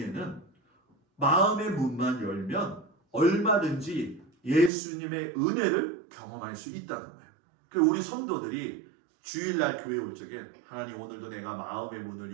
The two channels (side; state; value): left; drops out; at 4.7 s